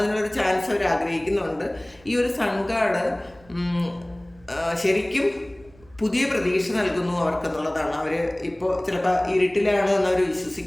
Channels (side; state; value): right; noise; rumble, 27 dB below the sound